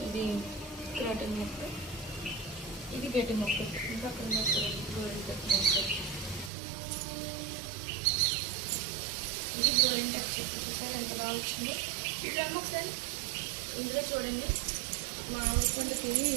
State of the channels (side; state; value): left; drops out; at 6.5 s